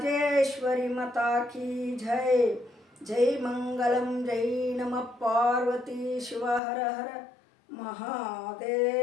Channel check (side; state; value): right; drops out; at 6.6 s